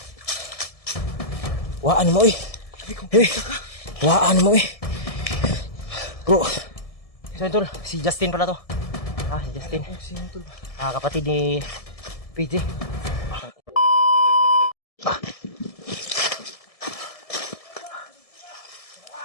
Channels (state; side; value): late; right; 1.7 ms